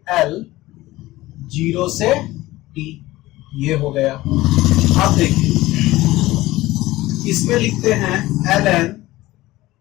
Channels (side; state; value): right; quieter; 17.9 dB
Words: L 0 से टी, ये हो गया। अब देखिए इसमें लिखते हैं L N